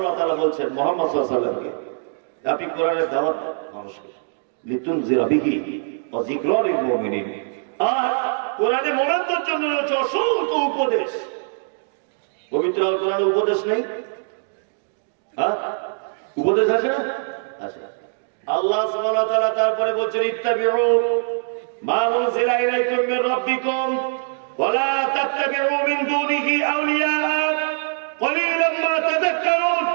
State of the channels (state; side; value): silent; left; digital silence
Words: ওয়া তাআলা বলছেন মুহাম্মদ সাল্লাল্লাহু আলাইহি ওয়াসাল্লামকে আপনি কোরআনের দাওয়াত দেন মানুষকে, লিতুনজিরা বিহি ওয়া যিকরা লিল মুমিনিন। আর কোরআনে মুমিনদের জন্য রয়েছে অসংখ্য উপদেশ। পবিত্র আল কোরআনে উপদেশ নেই? হ্যাঁ, উপদেশ আছে না? আছে। আল্লাহ সুবহানাহু ওয়া তাআলা তারপরে বলছেন ইত্তাবিউ মা উনজিলা ইলাইকুম মির রাব্বিকুম ওয়া লা তাত্তাবিউ মিন দুনিহি আউলিয়া কলিলাম মা তাযাক্কারুন।